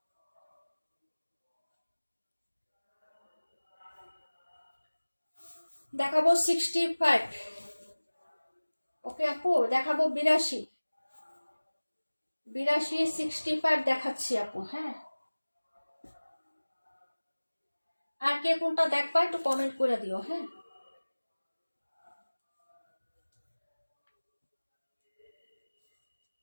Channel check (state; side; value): inverted; both; correlation -1.00